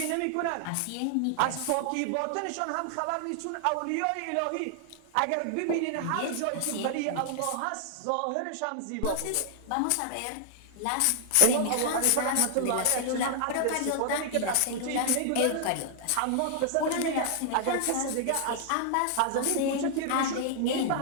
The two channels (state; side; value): different; both; correlation 0.00